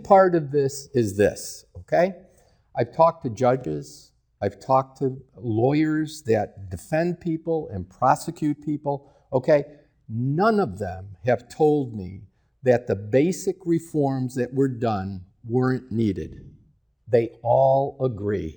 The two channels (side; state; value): both; identical; correlation 1.00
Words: part of this is this, okay? I've talked to judges, I've talked to lawyers that defend people and prosecute people, okay? None of them have told me that the basic reforms that were done weren't needed. They all